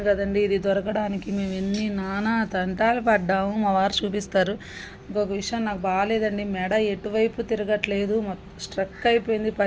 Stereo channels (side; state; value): both; identical; correlation 1.00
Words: కదండి, ఇది దొరకడానికి మేము ఎన్ని నానా తంటాలు పడ్డాము. మా వారు చూపిస్తారు. ఇంకొక విషయం నాకు బాగాలేదండి, మెడ ఎటువైపు తిరగట్లేదు, స్ట్రక్ అయిపోయింది,